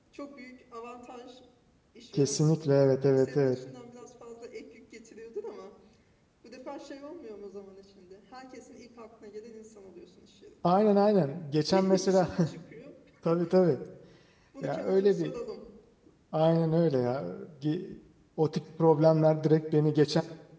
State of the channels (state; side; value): identical; both; correlation 1.00